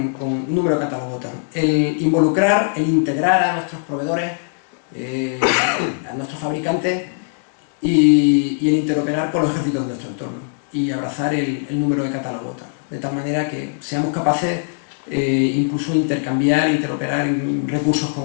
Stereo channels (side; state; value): right; silent; 66 dB below the other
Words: número de catálogo, el involucrar, el integrar a nuestros proveedores, a nuestros fabricantes y el interoperar con los ejércitos de nuestro entorno y abrazar el número de catálogo, de tal manera que seamos capaces incluso intercambiar, interoperar en recursos